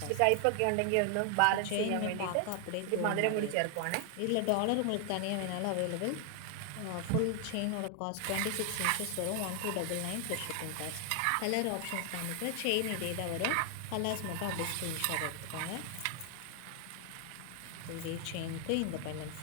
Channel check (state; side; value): different; both; correlation 0.00